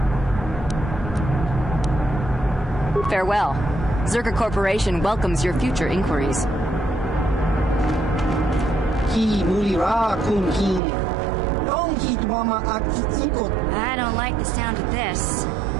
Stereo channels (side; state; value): left; drops out; at 10.8 s